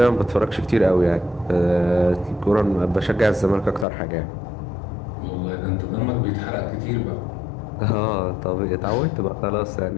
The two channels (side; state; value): right; drops out; at 3.9 s